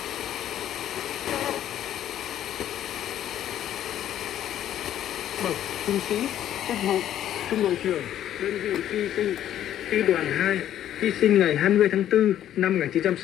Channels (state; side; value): quieter; right; 11.4 dB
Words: Bậc trung sĩ, chức vụ trung đội trưởng đơn vị hy sinh Phi đoàn 2 hy sinh ngày 20 tháng 4 năm